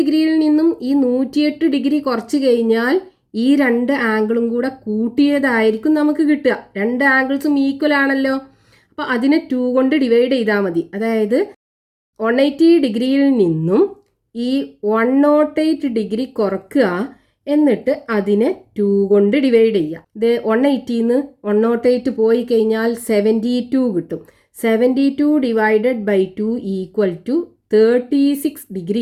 നിന്നും ഈ 108 ഡിഗ്രി കുറച്ച് കഴിഞ്ഞാൽ ഈ രണ്ട് ആംഗിളും കൂടെ കൂട്ടിയതായിരിക്കും നമുക്ക് കിട്ടുക. രണ്ട് ആംഗിൾസും ഈക്വൽ ആണല്ലോ. അപ്പോൾ അതിനെ 2 കൊണ്ട് ഡിവൈഡ് ചെയ്താൽ മതി. അതായത് 180 ഡിഗ്രിയിൽ നിന്നും ഈ 108 ഡിഗ്രി കുറക്കുക, എന്നിട്ട് അതിനെ 2 കൊണ്ട് ഡിവൈഡ് ചെയ്യുക. 180 108 പോയി കഴിഞ്ഞാൽ 72 കിട്ടും. 72 ഡിവൈഡഡ് ബൈ 2 ഈക്വൽ ടു 36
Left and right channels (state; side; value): identical; both; correlation 1.00